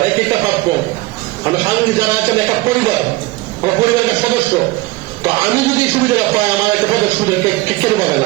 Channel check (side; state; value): left; quieter; 20.4 dB